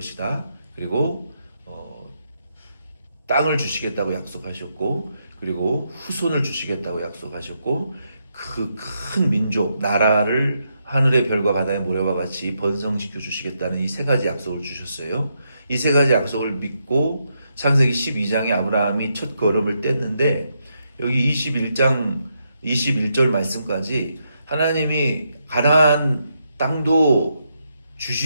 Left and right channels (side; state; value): both; inverted; correlation -0.81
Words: 그리고 땅을 주시겠다고 약속하셨고, 그리고 후손을 주시겠다고 약속하셨고, 그 큰 민족, 나라를 하늘의 별과 바다의 모래와 같이 번성시켜 주시겠다는 이 세 가지 약속을 주셨어요. 이 세 가지 약속을 믿고 창세기 12장에 아브라함이 첫 걸음을 뗐는데, 여기 21장 21절 말씀까지 하나님이 가나안 땅도